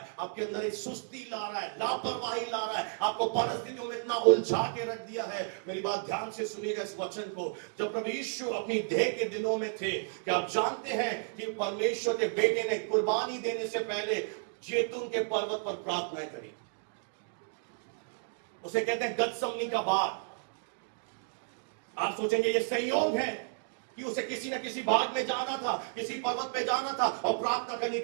आपके अंदर एक सुस्ती ला रहा है, लापरवाही ला रहा है, आपको परिस्थितियों में इतना उलझा के रख दिया है। मेरी बात ध्यान से सुनिएगा इस वचन को। जब प्रभु यीशु अपनी देह के दिनों में थे, क्या आप जानते हैं कि परमेश्वर के बेटे ने कुर्बानी देने से पहले जैतून के पर्वत पर प्रार्थना करी? उसे कहते हैं गतसमनी का बाग। आप सोचेंगे ये संयोग है कि उसे किसी न किसी बाग में जाना था, किसी पर्वत पे जाना था और प्रार्थना करनी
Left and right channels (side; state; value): left; silent; digital silence